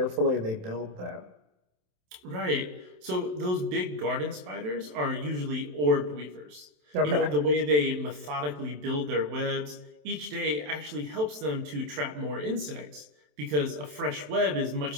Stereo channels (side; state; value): left; late; 27 ms